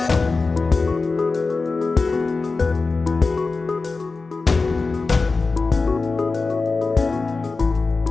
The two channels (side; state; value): right; quieter; 4.0 dB